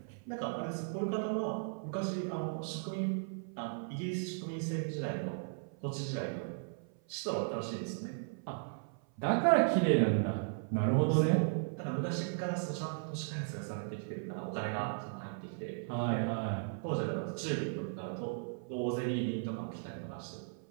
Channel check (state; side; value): silent; left; 54 dB below the other